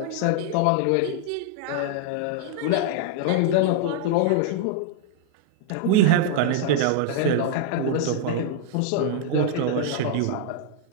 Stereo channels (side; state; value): both; different; correlation -0.01